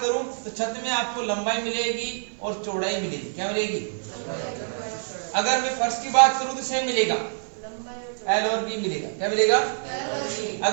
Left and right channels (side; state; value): left; silent; 57 dB below the other